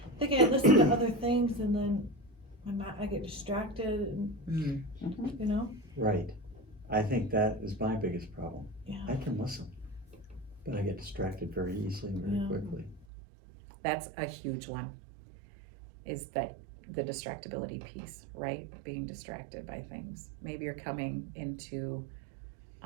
think I listen to other things and then I get distracted and, you know? Right. I think that is my biggest problem. Yeah. I can listen, but I get distracted very easily and very Yeah. quickly. That's a huge one, is that the distractibility piece, right? Being distracted by things. Maybe you're coming into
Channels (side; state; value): left; drops out; at 13.1 s